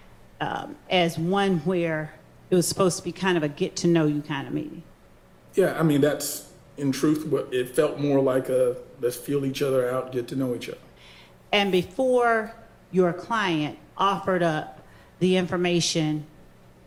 as one where it was supposed to be kind of a get-to-know-you kind of meeting? Yeah, I mean, that's, in truth, what it felt more like a let's feel each other out, get to know each other. And before your client offered up the information,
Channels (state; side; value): identical; both; correlation 1.00